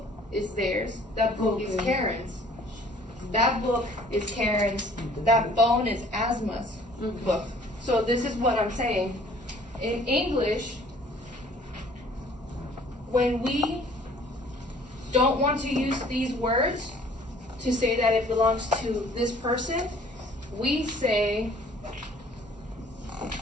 is theirs. That book is Karen's. That book is Karen's. That phone is Asma's book. So this is what I'm saying. In English, when we don't want to use these words to say that it belongs to this person, we say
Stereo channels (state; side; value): normal; both; correlation 0.55